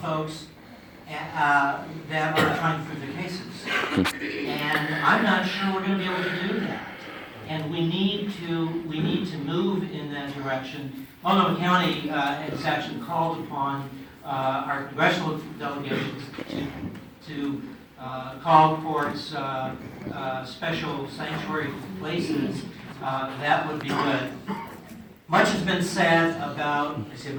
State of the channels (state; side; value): identical; both; correlation 1.00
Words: folks that are trying to prove their cases. And I'm not sure we're going to be able to do that. And we need to move in that direction. Multnomah County has actually called upon our congressional delegations to call courts special sanctuary places. That would be good. Much has been said about, I see